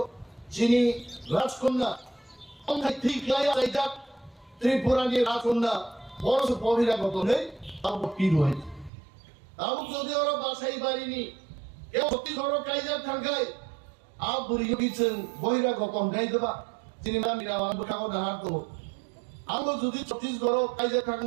চিনি রাজকন্যা অঙ্গাই ঠিক লাইয়া যাইতা ত্রিপুরা নি রাজকন্যা বড় বহিরাগত নেই আবো কি রয় আবু যদি ওরা বাসাই বাড়িনি কেউ ছত্তিশগড় কাইজার থাকায় আব বুড়িও গিয়েছেন বহিরাগত গাই দেবা সিনেমা মিরা আবু ঠাকুর না হার দেবো আবু যদি ছত্তিশগড় কাইজার থাকুন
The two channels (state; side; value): drops out; left; at 8.9 s